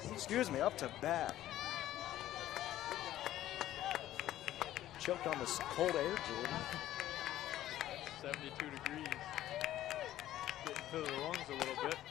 bat. Choked on this cold air, Jordan. 72 degrees. Getting to the lungs a little bit.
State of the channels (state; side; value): quieter; right; 13.5 dB